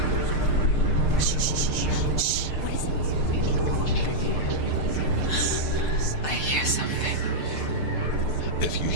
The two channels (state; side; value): late; right; 6.6 ms